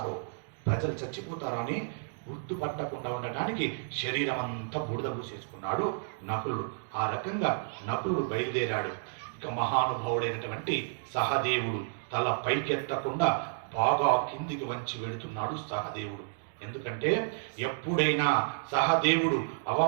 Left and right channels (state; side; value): silent; left; digital silence